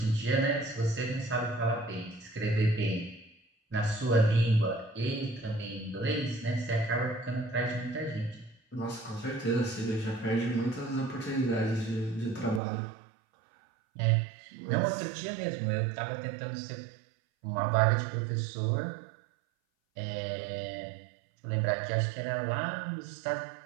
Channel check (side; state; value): left; drops out; at 12.6 s